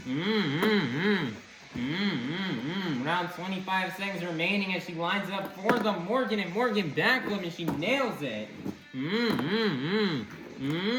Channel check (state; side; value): identical; both; correlation 1.00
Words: Around 25 seconds remaining as she lines up for the Morgan and Morgan backflip, and she nails it.